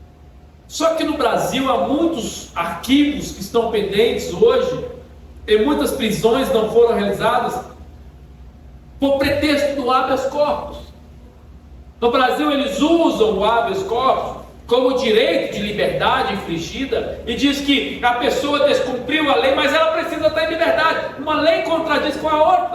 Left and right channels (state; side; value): identical; both; correlation 1.00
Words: Só que no Brasil há muitos arquivos que estão pendentes hoje, e muitas prisões não foram realizadas por pretexto do habeas corpus. No Brasil eles usam o habeas corpus como direito de liberdade infringida e diz que a pessoa descumpriu a lei, mas ela precisa estar em liberdade. Uma lei contradiz com a